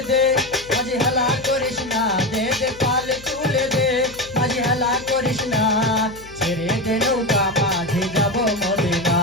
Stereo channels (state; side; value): noise; left; hum, 19 dB below the sound